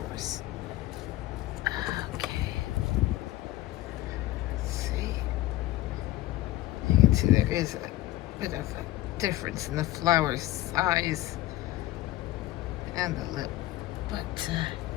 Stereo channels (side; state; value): right; quieter; 16.0 dB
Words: Okay. Let's see. You can see there is a bit of a difference in the flower size and the lip, but